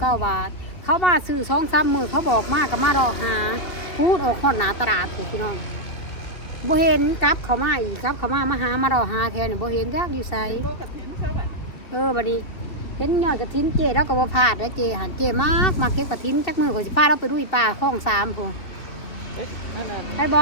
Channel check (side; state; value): right; late; 2.9 ms